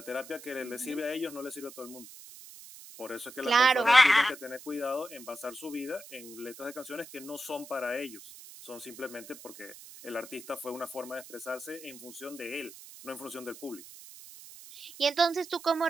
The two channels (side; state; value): right; noise; hiss, 17 dB below the sound